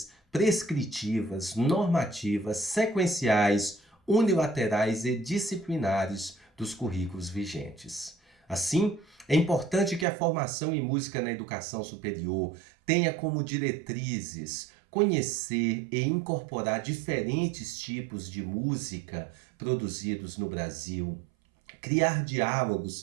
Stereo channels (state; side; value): drops out; left; at 10.1 s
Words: prescritivas, normativas, sequenciais, unilaterais e disciplinares dos currículos vigentes. Assim, é importante que a formação em música na educação superior tenha como diretrizes conhecer e incorporar diferentes tipos de música produzidos no Brasil, criar